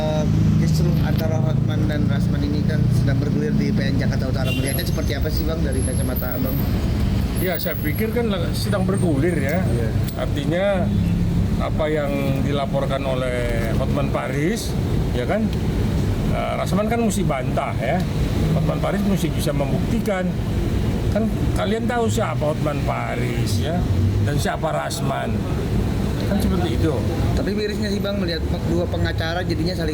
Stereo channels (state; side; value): identical; both; correlation 1.00